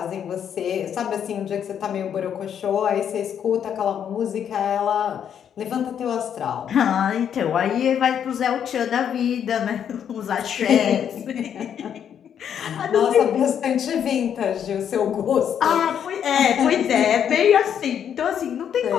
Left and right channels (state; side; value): quieter; right; 8.7 dB